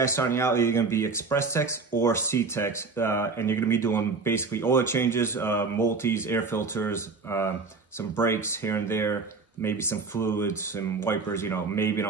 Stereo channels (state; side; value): quieter; left; 4.4 dB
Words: starting out, you're going to be express techs or C techs, and you're going to be doing basically oil changes, multis, air filters, some brakes here and there, maybe some fluids, some wipers, maybe an